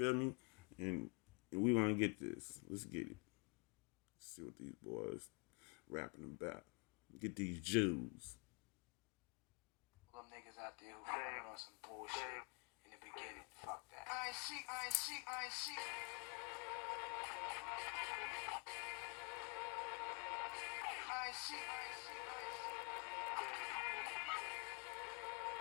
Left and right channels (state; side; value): quieter; right; 36.0 dB